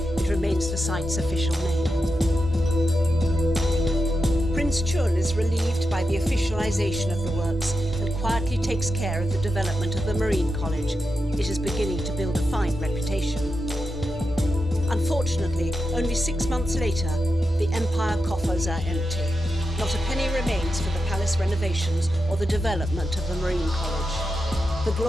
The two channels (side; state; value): both; normal; correlation 0.88